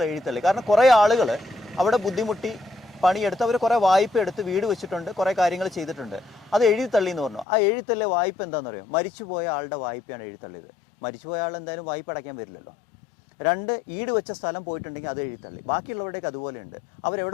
എഴുതിത്തള്ളി. കാരണം കുറേ ആളുകൾ അവിടെ ബുദ്ധിമുട്ടി പണിയെടുത്ത് അവർ കുറേ വായ്പ എടുത്ത് വീട് വെച്ചിട്ടുണ്ട്, കുറേ കാര്യങ്ങൾ ചെയ്തിട്ടുണ്ട്. അത് എഴുതിത്തള്ളി എന്ന് പറഞ്ഞു. ആ എഴുതിത്തള്ളിയ വായ്പ എന്താണെന്ന് അറിയാം? മരിച്ചുപോയ ആളുടെ വായ്പയാണ് എഴുതിത്തള്ളിയത്. മരിച്ചുപോയ ആൾ എന്തായാലും വായ്പ അടയ്ക്കാൻ വരില്ലല്ലോ. 2, ഈട് വെച്ച സ്ഥലം പോയിട്ടുണ്ടെങ്കിൽ അത് എഴുതിത്തള്ളി. ബാക്കിയുള്ളവരുടെയൊക്കെ അതുപോലെയുണ്ട്.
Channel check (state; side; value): drops out; right; at 7.5 s